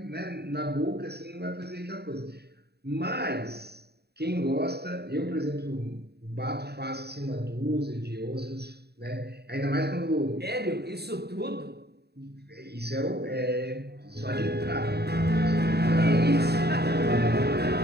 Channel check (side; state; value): left; late; 0.47 ms